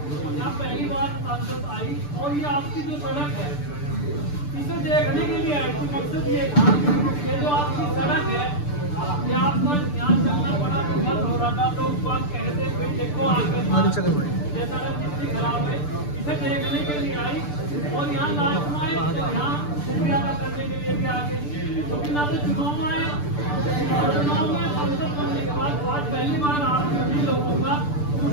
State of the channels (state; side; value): late; right; 6.8 ms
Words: यहाँ पहली बार सांसद आई और ये आपकी जो सड़क है इसे देखने के लिए आई। तो मकसद ये था कि जो आपकी सड़क है ये आपका यहाँ चलना बड़ा दुर्गम हो रहा था, तो आप कहते भाई देखो आगे ये सड़क कितनी खराब है, इसे देखने के लिए आई और यहाँ लास्ट में आए तो यहाँ शुक्रिया अदा करने के लिए भी आगे, क्योंकि ना तो चुनाव आए और चुनाव में सांसद बनने के बाद आज पहली बार आप सभी लोगों का